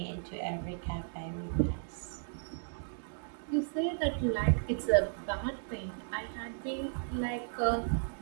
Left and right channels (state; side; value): silent; left; digital silence